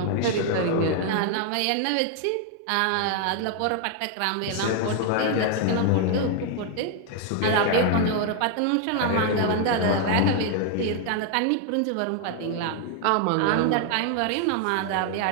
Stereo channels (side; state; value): both; different; correlation 0.00